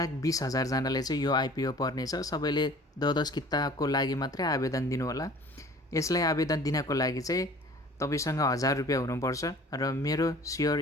जनाले चाहिँ यो आइपिओ पर्नेछ। सबैले 10 किताको लागि मात्रै आवेदन दिनुहोला। यसलाई आवेदन दिनको लागि चाहिँ तपाईसँग 1000 रुपियाँ हुनुपर्छ र मेरो सेयर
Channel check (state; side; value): normal; both; correlation 0.47